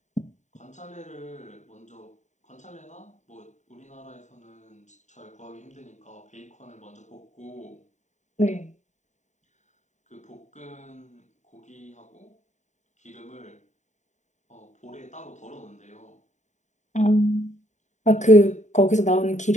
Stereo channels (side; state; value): right; late; 0.34 ms